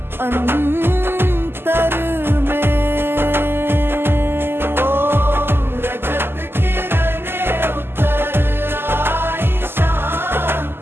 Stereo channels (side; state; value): left; late; 0.11 ms